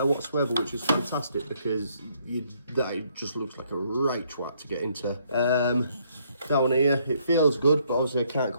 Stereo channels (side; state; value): both; inverted; correlation -0.69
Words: whatsoever, which is fantastic because that just looks like a right twat to get into. Down here, it feels good, but obviously I can't